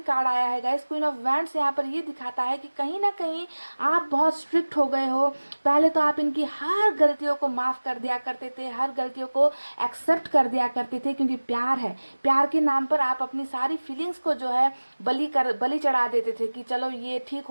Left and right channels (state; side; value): inverted; both; correlation -1.00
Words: आया है गाइस। क्वीन ऑफ वैंड्स यहाँ पर ये दिखाता है कि कहीं ना कहीं आप बहुत स्ट्रिक्ट हो गए हो। पहले तो आप इनकी हर गलतियों को माफ़ कर दिया करते थे, हर गलतियों को एक्सेप्ट कर दिया करते थे, क्योंकि प्यार है। प्यार के नाम पर आप अपनी सारी फीलिंग्स को जो है बलि चढ़ा देते थे कि चलो ये ठीक